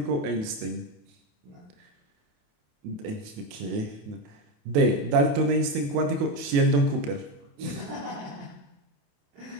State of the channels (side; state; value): left; late; 28 ms